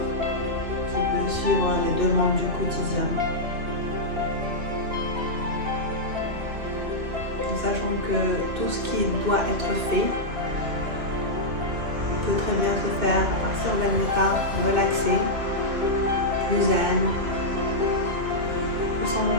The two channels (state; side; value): late; left; 2.8 ms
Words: qui peut suivre les demandes du quotidien. En sachant que tout ce qui doit être fait peut très bien se faire à partir d'un état relaxé, plus zen, qui sont